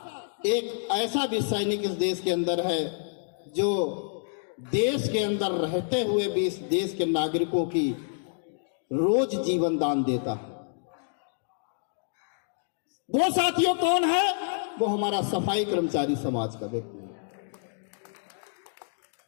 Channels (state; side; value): silent; right; digital silence